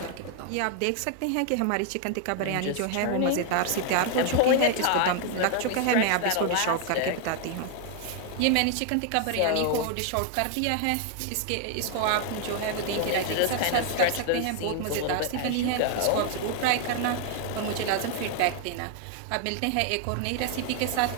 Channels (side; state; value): both; different; correlation 0.00